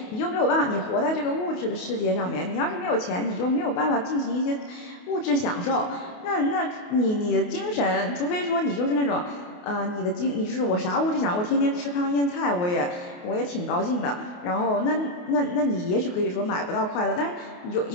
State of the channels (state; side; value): late; right; 28 ms